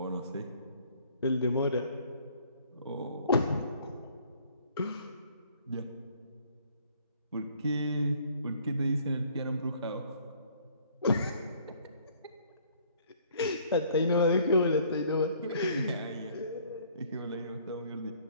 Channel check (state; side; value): inverted; both; correlation -0.59